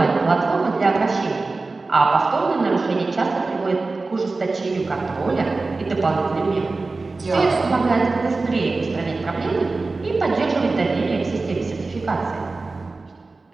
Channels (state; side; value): quieter; left; 3.6 dB